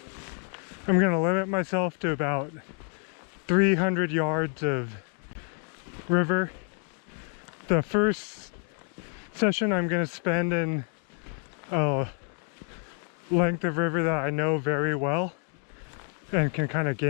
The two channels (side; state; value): right; quieter; 36.0 dB